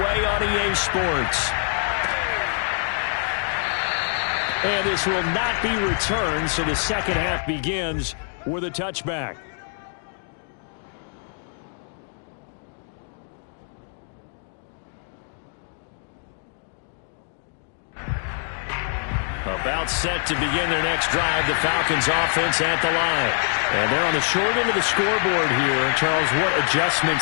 on EA Sports. And this will not be returned, so the second half begins with a touchback. About set to begin their next drive, the Falcons offense at the line. And they're on the short end of the scoreboard here. Charles, what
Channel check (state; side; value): silent; right; 61 dB below the other